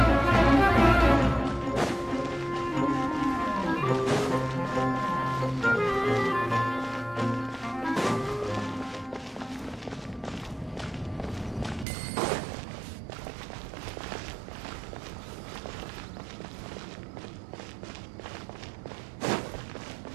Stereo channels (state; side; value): drops out; left; at 11.9 s